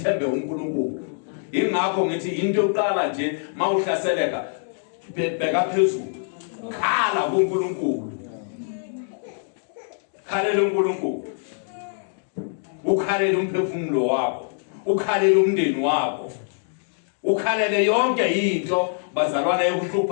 uNkulunkulu ingakho ngithi into yokuqala nje mawuhlaseleka bheka phezulu khala kuNkulunkulu khalela uNkulunkulu ukhalela umphefumulo wakho ukhalela umndeni wakho ukhalele yonke into bazalwana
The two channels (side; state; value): right; silent; digital silence